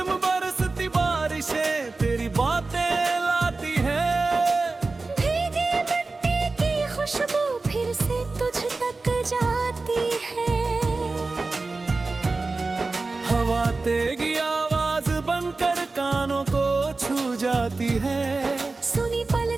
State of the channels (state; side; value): quieter; left; 3.6 dB